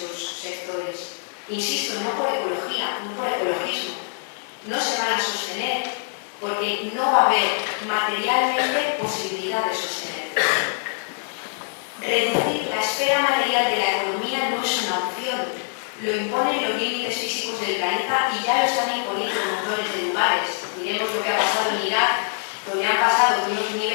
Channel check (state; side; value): silent; right; digital silence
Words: sectores. Insisto, no por ecología, no por ecologismo. No se van a sostener porque no va a haber materialmente posibilidad de sostenerlos. Reducir la esfera material de la economía no es una opción. Lo imponen los límites físicos del planeta y ya lo están imponiendo montones de lugares. Miremos lo que ha pasado en Irak, donde han pasado de unos